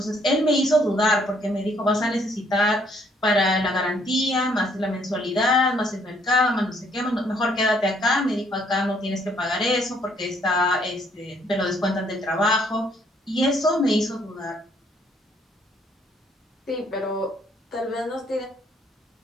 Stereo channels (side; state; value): both; normal; correlation 0.66